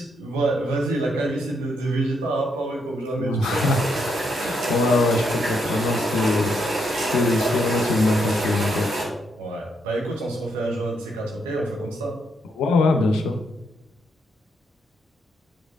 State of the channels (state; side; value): normal; both; correlation 0.77